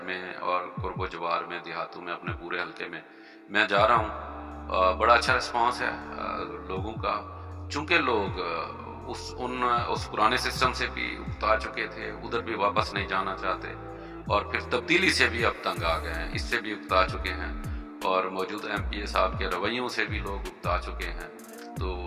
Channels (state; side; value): identical; both; correlation 1.00